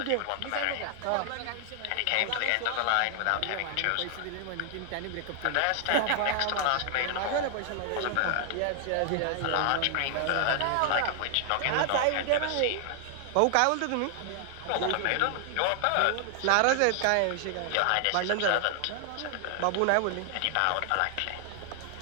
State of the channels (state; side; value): different; both; correlation 0.00